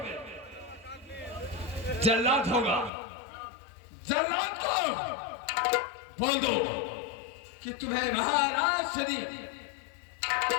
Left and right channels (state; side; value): drops out; right; at 2.9 s